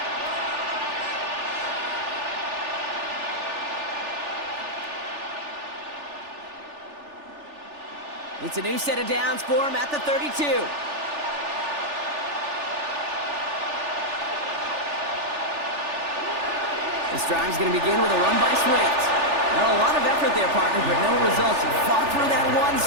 It's a new set of downs for him at the 32. This drive's going to begin with a run by Swift. Well, a lot of effort there, partner, but no results. He fought through that one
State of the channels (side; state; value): left; late; 3.4 ms